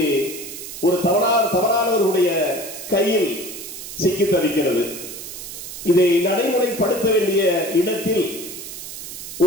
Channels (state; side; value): noise; right; hiss, 10 dB below the sound